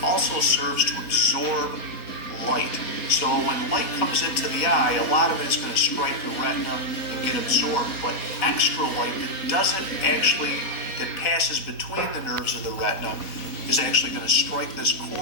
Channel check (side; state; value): right; late; 4.1 ms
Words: also serves to absorb light. So when light comes into the eye, a lot of it is going to strike the retina and get absorbed, but extra light that passes between the nerves of the retina is actually going to strike this